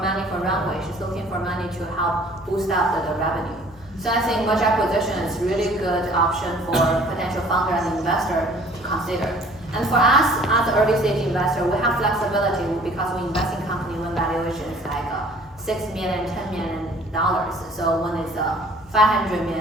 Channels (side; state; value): both; normal; correlation 0.53